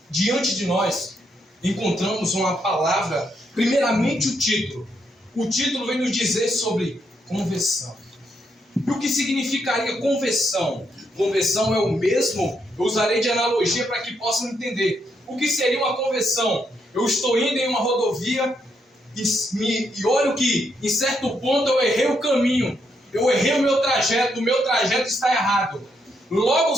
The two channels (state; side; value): normal; both; correlation 0.78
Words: Diante de nós, encontramos uma palavra, primeiramente o título. O título vem nos dizer sobre conversão. E o que significaria conversão? Conversão é o mesmo, eu usarei de analogia para que possam entender. O que seria uma conversão? Eu estou indo em uma rodovia e olho que em certo ponto eu errei o caminho. Eu errei o meu trajeto está errado. Logo